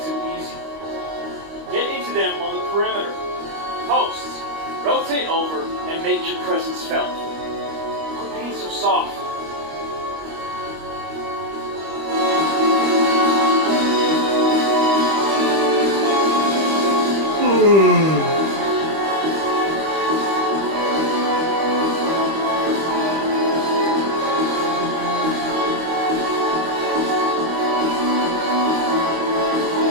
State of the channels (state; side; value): late; left; 25 ms